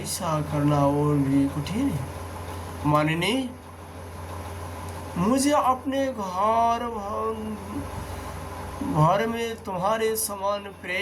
करना और भी कठिन है। मानिनी, मुझे अपने घर में तुम्हारे समान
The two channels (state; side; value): identical; both; correlation 1.00